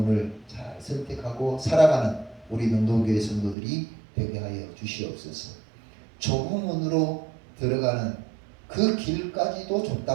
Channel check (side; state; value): left; drops out; at 3.6 s